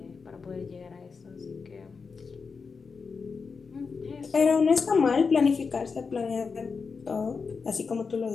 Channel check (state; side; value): quieter; right; 5.1 dB